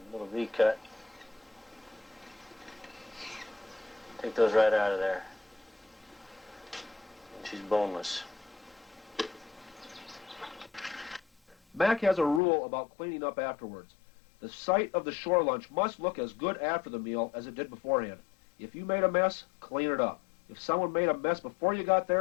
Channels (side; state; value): right; drops out; at 12.4 s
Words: a little V cut. Take those right out of there. And she's boneless. Mac has a rule about cleaning up afterwards. The site of the shore lunch must look as good after the meal as it did beforehand. If you made a mess, clean it up. If someone made a mess before you got